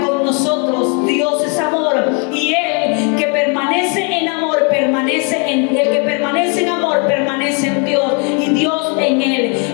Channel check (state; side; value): quieter; right; 36.2 dB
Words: nosotros. Dios es amor y el que permanece en amor permanece en Dios y Dios en él.